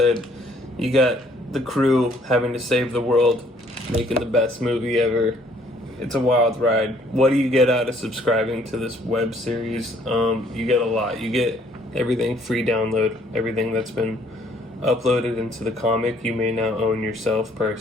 you got the crew having to save the world, making the best movie ever. It's a wild ride. What do you get out of subscribing to this web series? You get a lot. You get everything free download, everything that's been uploaded into the comic you may now own yourself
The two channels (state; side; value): normal; both; correlation 0.62